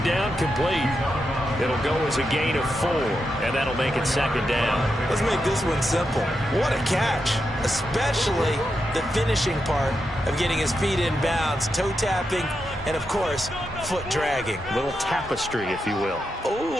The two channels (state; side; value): normal; both; correlation 0.86